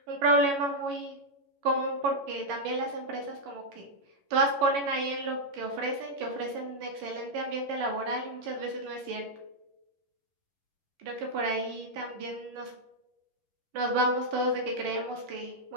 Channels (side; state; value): left; late; 11 ms